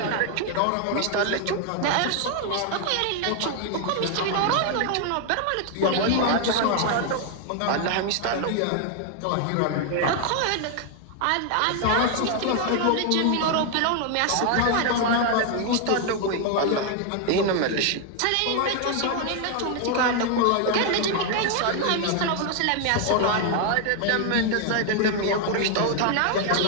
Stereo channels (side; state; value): both; different; correlation 0.00